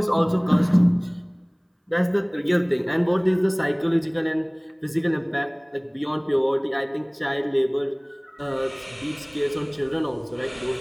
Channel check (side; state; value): both; identical; correlation 1.00